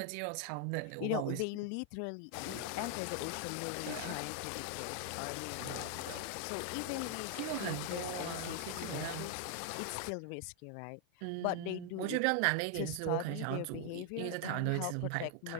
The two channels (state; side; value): different; both; correlation 0.00